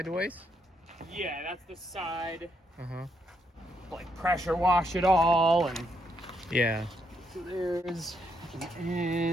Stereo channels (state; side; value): normal; both; correlation 0.77